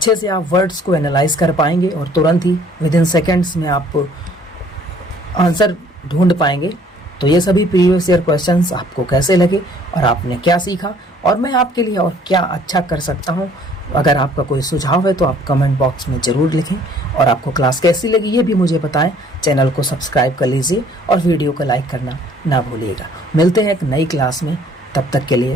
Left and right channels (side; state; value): both; normal; correlation 0.58